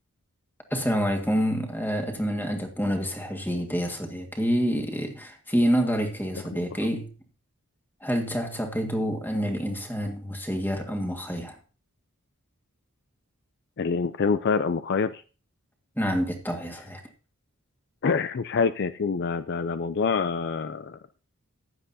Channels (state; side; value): normal; both; correlation 0.57